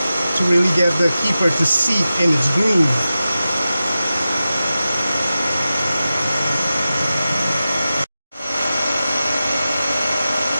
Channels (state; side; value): inverted; both; correlation -0.94